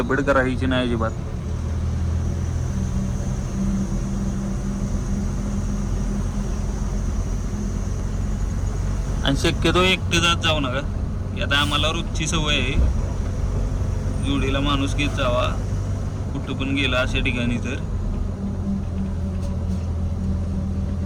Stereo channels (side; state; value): both; identical; correlation 1.00